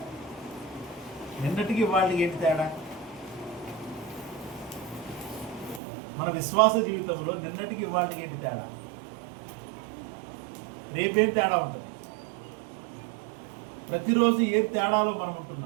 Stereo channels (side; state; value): left; drops out; at 5.8 s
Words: నిన్నటికి వాళ్ళకి ఏంటి తేడా? మన విశ్వాస జీవితంలో నిన్నటికి వాళ్ళకి ఏంటి తేడా? రేపేం తేడా ఉంటుంది? ప్రతిరోజు ఏ తేడాలో మనం